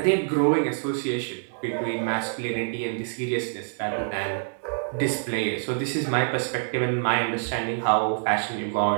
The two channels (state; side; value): silent; left; 61 dB below the other